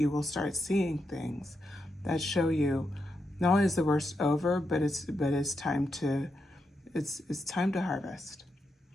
will start seeing things that show you not only is the worst over, but it's time to it's time to harvest.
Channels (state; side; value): normal; both; correlation 0.84